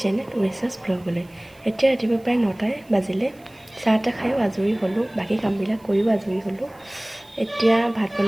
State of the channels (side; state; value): right; noise; hiss, 30 dB below the sound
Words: চেনেল উৰেছাছ ব্লগলৈ। এতিয়া ৰাতিপুৱা প্ৰায় 9টাই বাজিলে। চাহ তাহ খায়ো আজৰি হ'লোঁ, বাকী কামবিলাক কৰিও আজৰি হ'লোঁ। এতিয়া ভাত